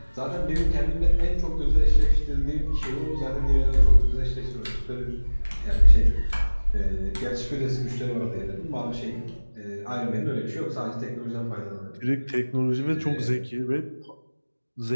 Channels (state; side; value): inverted; both; correlation -1.00